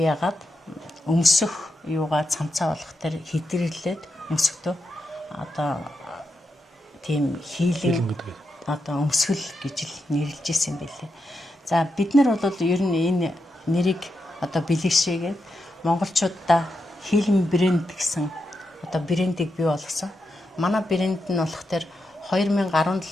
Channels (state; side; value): normal; both; correlation 0.86